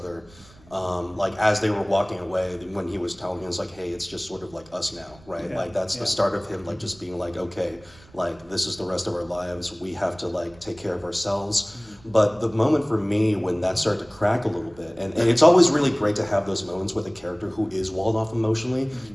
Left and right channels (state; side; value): noise; right; rumble, 25 dB below the sound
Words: As they were walking away, when he was telling us hey, it's just sort of us now, right? Yeah, That's the start of him just being okay, this is the rest of our lives. We have to take care of ourselves. But the moment for me when that started to crack a little bit, and it's always really great to have those moments with a character who is walled off emotionally